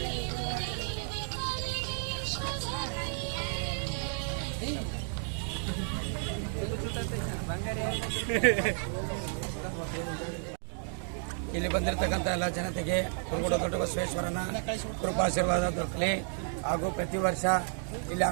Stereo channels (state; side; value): silent; left; 56 dB below the other